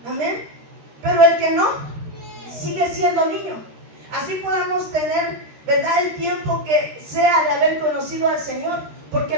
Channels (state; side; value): late; left; 13 ms